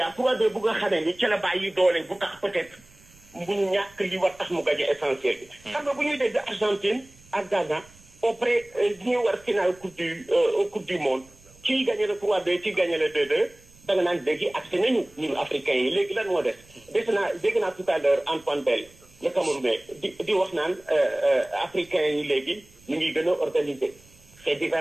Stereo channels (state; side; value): noise; right; rumble, 27 dB below the sound